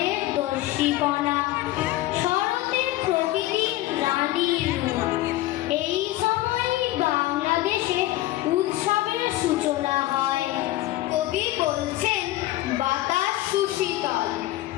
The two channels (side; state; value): right; quieter; 16.2 dB